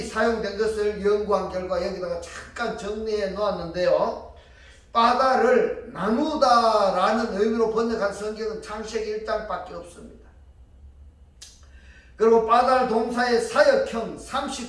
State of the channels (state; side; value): identical; both; correlation 1.00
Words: 사용된 것을 연구한 결과 여기다가 잠깐 정리해 놓았는데요, 빠달을 나누다라는 의미로 번역한 성경은 창세기 1장밖에 없습니다. 그리고 빠달 동사의 사역형